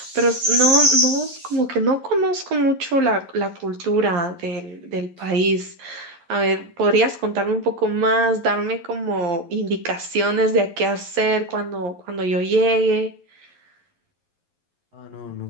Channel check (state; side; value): late; left; 11 ms